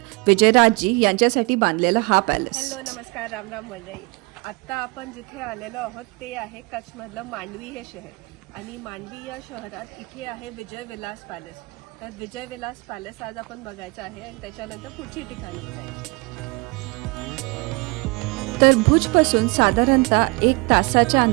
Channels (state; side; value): quieter; left; 28.1 dB